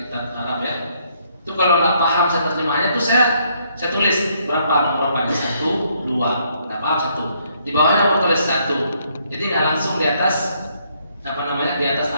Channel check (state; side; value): inverted; both; correlation -0.70